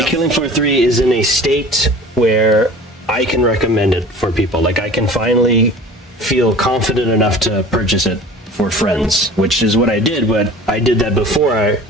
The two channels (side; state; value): both; normal; correlation 0.42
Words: Killing Floor 3 is in a state where I can recommend it for people. Like, I can finally feel confident enough to purchase it for friends, which is what I did, but I did that before